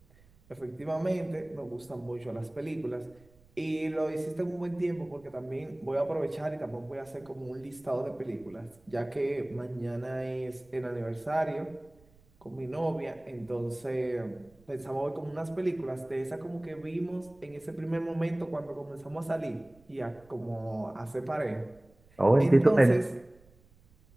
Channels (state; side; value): noise; right; rumble, 28 dB below the sound